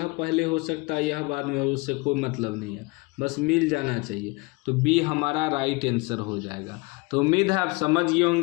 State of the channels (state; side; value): quieter; right; 26.4 dB